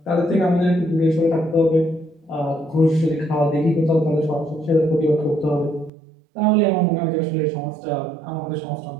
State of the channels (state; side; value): drops out; left; at 5.9 s